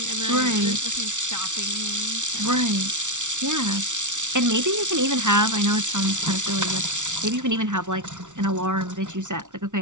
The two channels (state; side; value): late; left; 0.86 ms